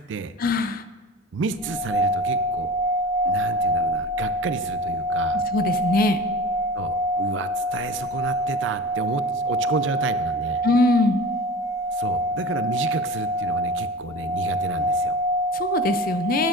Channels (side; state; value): both; normal; correlation 0.35